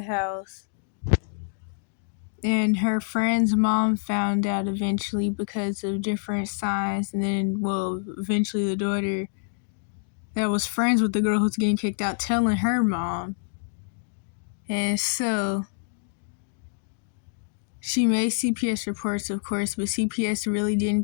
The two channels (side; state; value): right; silent; digital silence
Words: house. And her friend's mom found out eventually because of different signs. And then, eventually the daughter that was friends with the girl who's getting kicked out telling her mom. And so she made CPS reports, of course, but CPS really